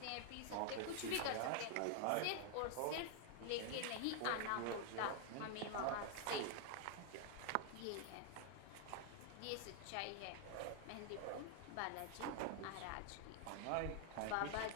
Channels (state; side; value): different; both; correlation 0.00